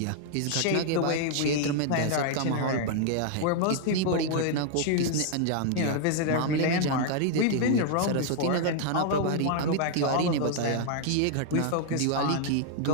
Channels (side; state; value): both; different; correlation 0.00